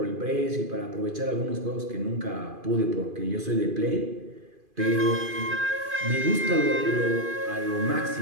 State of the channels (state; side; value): late; left; 2.5 ms